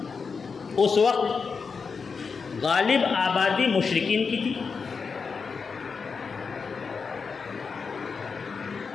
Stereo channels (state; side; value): quieter; right; 5.3 dB